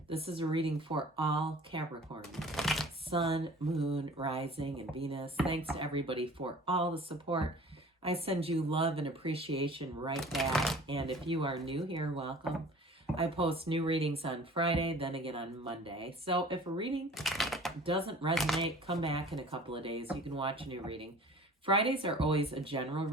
This is a reading for all Capricorn, Sun, Moon, Rising, and Venus. Thanks to everybody for all the support. I send you love and appreciation right back. And if you are new here, welcome. I post new readings on Friday, then again on Monday. So if a reading doesn't resonate, come back in a couple of days. You can watch a new reading. Fridays are always a general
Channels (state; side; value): normal; both; correlation 0.46